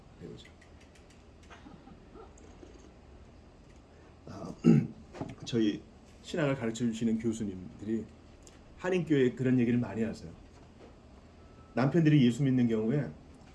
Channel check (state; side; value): identical; both; correlation 1.00